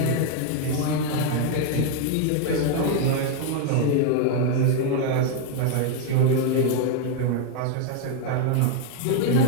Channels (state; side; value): different; both; correlation 0.01